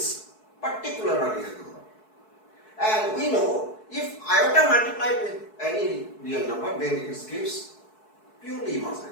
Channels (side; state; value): right; late; 4.6 ms